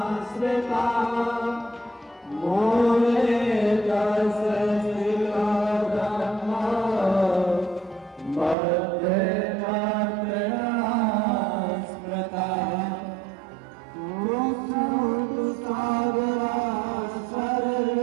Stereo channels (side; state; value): left; drops out; at 8.6 s